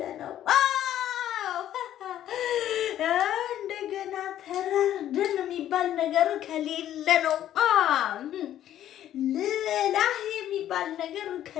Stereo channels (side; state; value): right; quieter; 11.7 dB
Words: ነው እንደገና ተራርደን የሚባል ነገር ከሌለ ነው ልላህ የሚባል ነገር